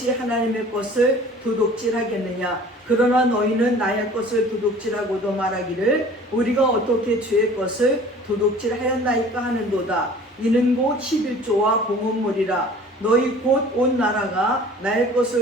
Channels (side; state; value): both; normal; correlation 0.47